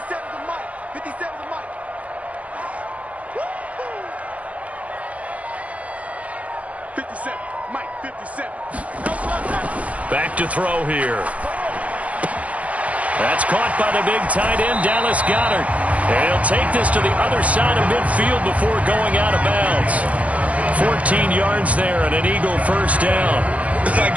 57, Mike, 57. Back to throw here. That's caught by the big tight end, Dallas Goedert. And he'll take this to the other side of midfield before going out of bounds. 14 yards there and an Eagle first down. I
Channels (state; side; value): late; left; 0.066 ms